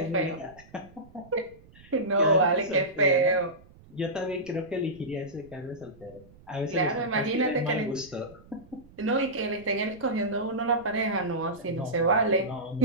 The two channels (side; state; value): right; noise; rumble, 24 dB below the sound